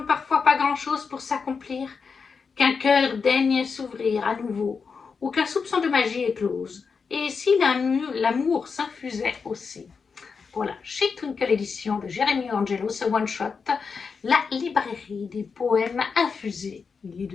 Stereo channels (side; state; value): right; quieter; 5.4 dB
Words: parfois pas grand-chose pour s'accomplir, qu'un cœur daigne s'ouvrir à nouveau, ou qu'un soupçon de magie éclose. Et si l'amour s'infusait aussi. Voilà, chez Twinkle Édition de Jérémy Angelo, ce one-shot, la librairie des poèmes infusés. Il est